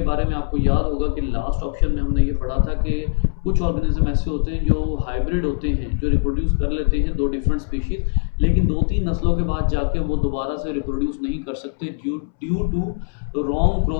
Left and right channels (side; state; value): right; silent; 65 dB below the other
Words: बारे में आपको याद होगा कि लास्ट ऑप्शन में हमने ये पढ़ा था कि कुछ ऑर्गेनिज्म ऐसे होते हैं जो हाइब्रिड होते हैं, जो रिप्रोड्यूस कर लेते हैं दो डिफरेंट स्पीशीज, लेकिन 2-3 नस्लों के बाद जाके वो दोबारा से रिप्रोड्यूस नहीं कर सकते due to wrong